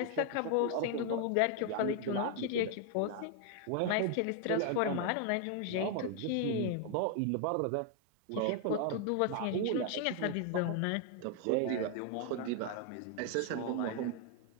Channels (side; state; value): both; different; correlation 0.00